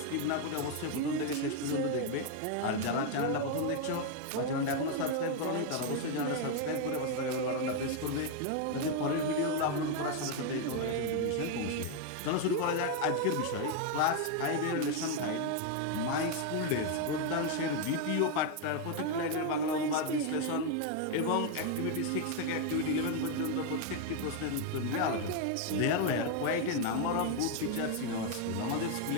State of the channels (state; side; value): different; both; correlation 0.01